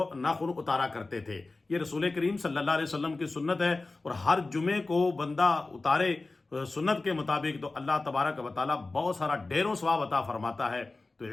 ناخن اتارا کرتے تھے۔ یہ رسول کریم صلی اللہ علیہ وسلم کی سنت ہے، اور ہر جمعے کو بندہ اتارے سنت کے مطابق تو اللہ تبارک و تعالیٰ بہت سارا ڈھیروں ثواب عطا فرماتا ہے۔ تو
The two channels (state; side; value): quieter; right; 3.4 dB